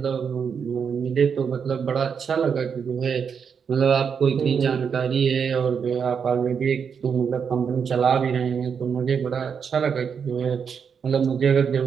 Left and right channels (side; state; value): left; quieter; 6.7 dB